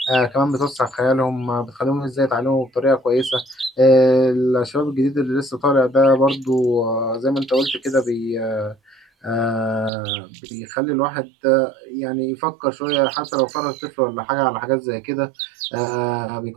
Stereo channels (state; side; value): drops out; left; at 9.9 s